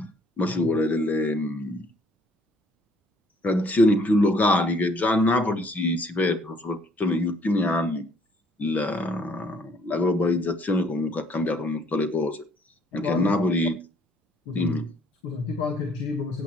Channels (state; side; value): normal; both; correlation 0.63